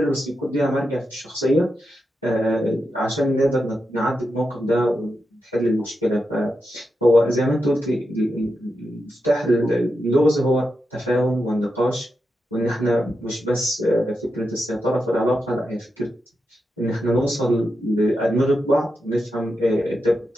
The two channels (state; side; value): normal; both; correlation 0.87